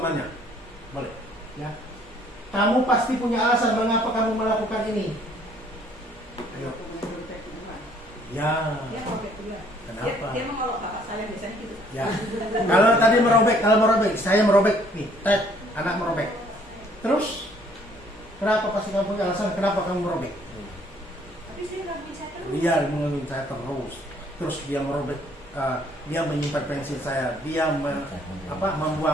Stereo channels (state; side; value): normal; both; correlation 0.61